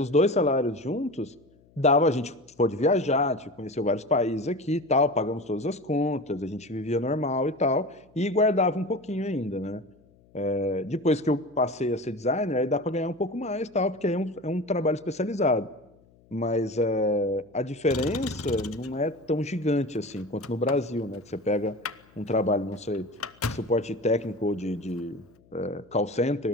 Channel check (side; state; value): left; noise; hum, 29 dB below the sound